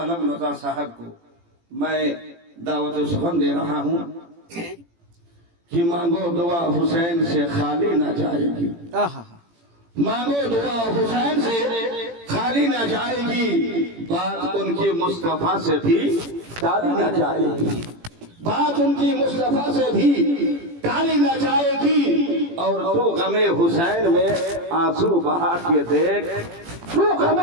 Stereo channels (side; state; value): left; late; 18 ms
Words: रजा साहब को मैं दावत सुखन दे रहा हूँ कि मांगो दुआ हुसैन से खाली ना जाएगी। मांगो दुआ हुसैन से खाली ना जाएगी। बात उनकी मुस्तफा से भी टाली ना जाएगी। बात उनकी मुस्तफा से भी टाली ना जाएगी। और तू गमे हुसैन में आंसू बहा के देख, तू